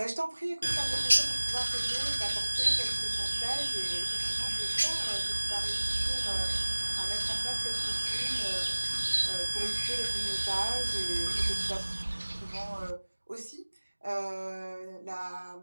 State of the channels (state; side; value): inverted; both; correlation -1.00